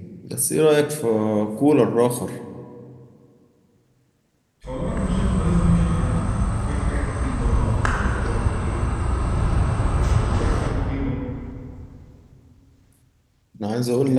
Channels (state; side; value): identical; both; correlation 1.00